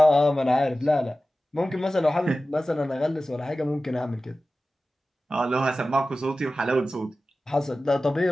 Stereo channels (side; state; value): both; normal; correlation 0.95